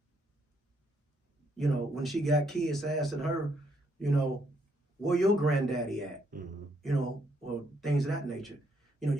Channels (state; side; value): normal; both; correlation 0.73